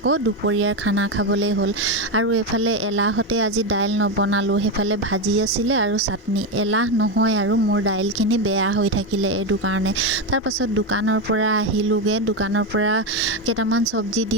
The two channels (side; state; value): both; normal; correlation 0.11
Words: দুপৰীয়াৰ খানা খাবলৈ হ'ল। আৰু এইফালে এলাহতে আজি দাইল নবনালোঁ। সেইফালে ভাজি আছিলে আৰু চাটনি। এলাহ নহয় আৰু মোৰ দাইলখিনি বেয়া হৈ থাকিলে এইটো কাৰণে। তাৰপাছত দোকানৰ পৰা আহিলোঁগৈ। দোকানৰ পৰা কেইটামান চব্জি দি